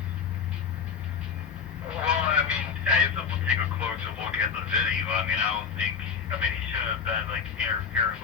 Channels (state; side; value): quieter; right; 6.6 dB